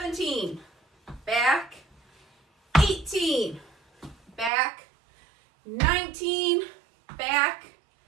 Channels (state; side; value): drops out; left; at 4.5 s